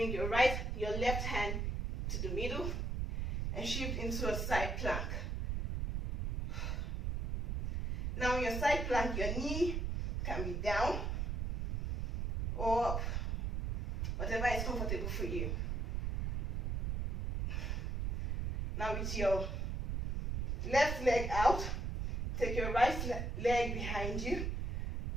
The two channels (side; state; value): right; noise; rumble, 1 dB below the sound